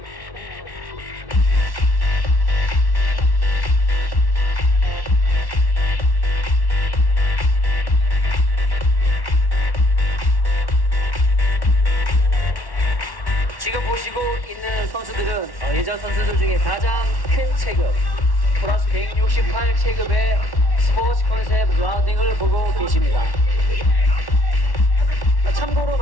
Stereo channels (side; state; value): right; late; 1.1 ms